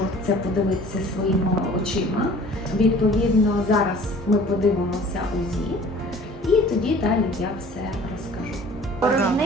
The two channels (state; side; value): normal; both; correlation 0.48